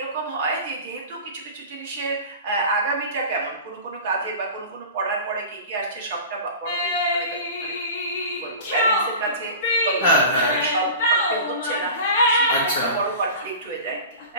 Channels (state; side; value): inverted; both; correlation -0.35